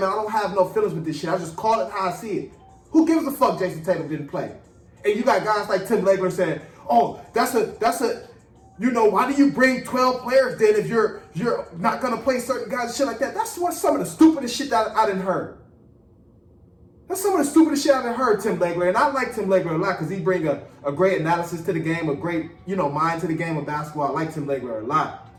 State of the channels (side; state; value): both; identical; correlation 1.00